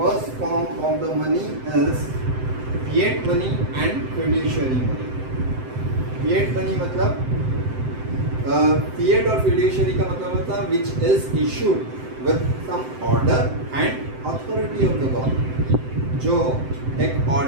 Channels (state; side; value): late; left; 7.8 ms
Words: form of the money is fiat money and fiduciary money. Fiat money मतलब फिएट और फिड्यूशियरी का मतलब होता है which is issued with some order and authority of the government. जो एक